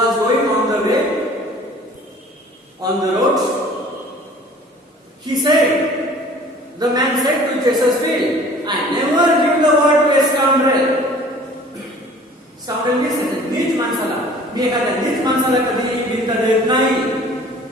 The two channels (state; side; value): normal; both; correlation 0.49